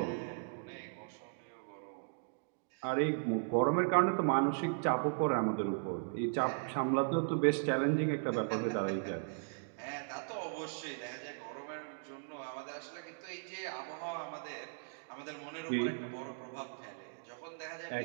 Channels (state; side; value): silent; left; digital silence